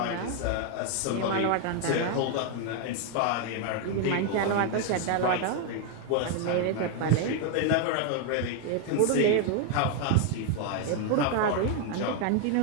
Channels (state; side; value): different; both; correlation 0.00